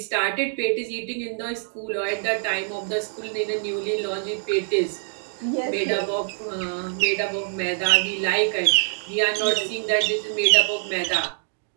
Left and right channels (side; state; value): left; silent; digital silence